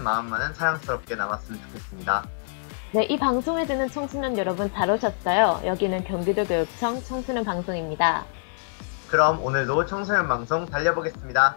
마음만은 사랑스럽게 남았으면 좋겠습니다. 네, 이 방송에 듣는 청소년 여러분 잘 오셨어요. 여기는 경기도 교육청 청소년 방송입니다. 그럼 오늘도 청소년 방송 달려보겠습니다.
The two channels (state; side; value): silent; right; digital silence